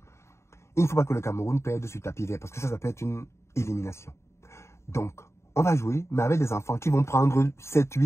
Il ne faut pas que le Cameroun perde sur tapis vert, parce que ça peut être une élimination. Donc, on va jouer, mais avec des enfants qui vont prendre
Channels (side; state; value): right; late; 0.13 ms